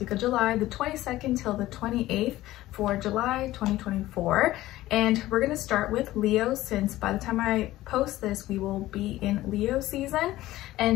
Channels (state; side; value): quieter; right; 16.0 dB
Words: of July, the 22nd till the 28th for July 2024. And we're going to start with Leo, since by the time I post this we will be in Leo season,